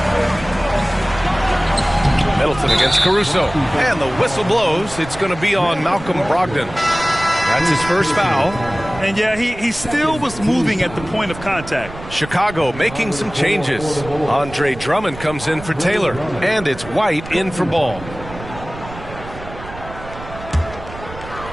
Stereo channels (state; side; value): noise; right; rumble, 14 dB below the sound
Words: Middleton against Caruso. And the whistle blows. It's going to be on Malcolm Brogdon. That's his first foul. And, yeah, he still was moving at the point of contact. Chicago making some changes. Andre Drummond comes in for Taylor. And it's White in for Ball.